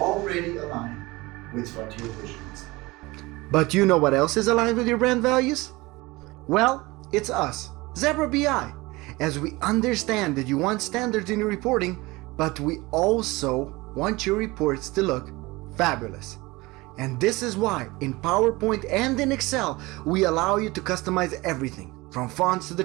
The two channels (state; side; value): quieter; left; 22.0 dB